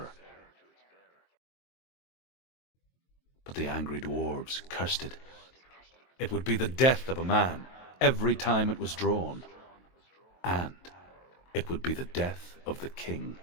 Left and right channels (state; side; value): late; right; 23 ms